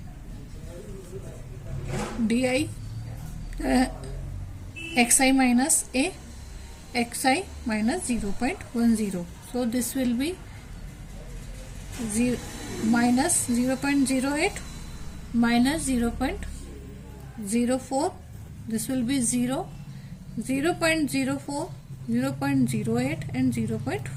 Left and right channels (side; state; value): both; identical; correlation 1.00